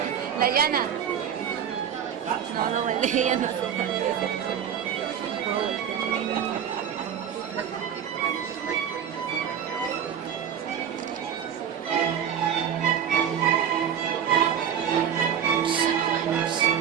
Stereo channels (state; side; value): quieter; left; 8.7 dB